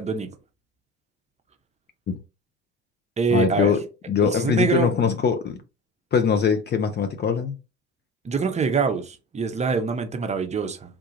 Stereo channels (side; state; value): both; normal; correlation 0.33